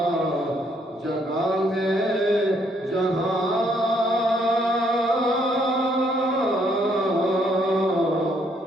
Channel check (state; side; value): normal; both; correlation 0.69